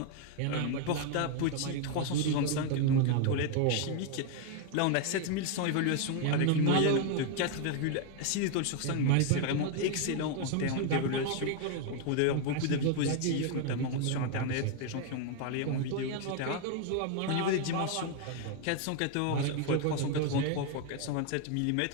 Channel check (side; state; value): both; different; correlation 0.01